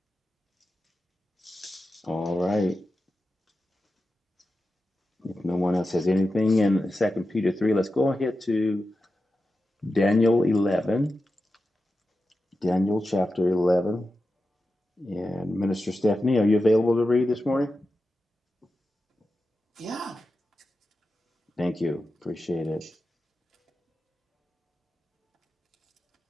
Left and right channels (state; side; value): normal; both; correlation 0.92